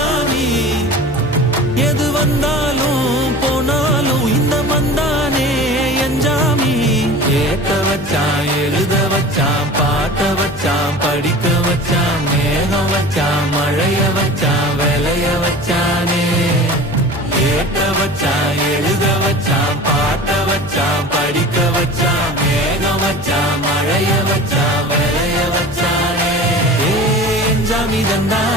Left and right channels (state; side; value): noise; left; hum, 14 dB below the sound